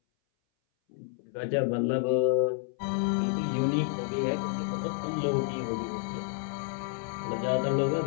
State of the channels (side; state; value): right; silent; 58 dB below the other